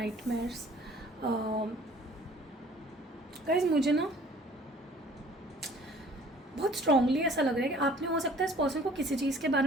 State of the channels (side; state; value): both; normal; correlation 0.53